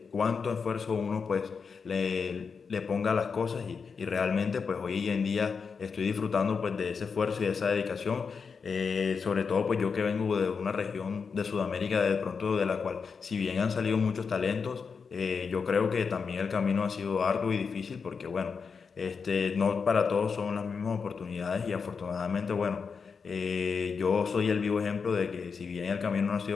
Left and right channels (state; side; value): quieter; right; 5.5 dB